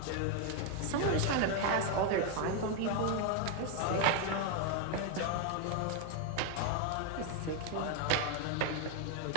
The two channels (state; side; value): different; both; correlation 0.01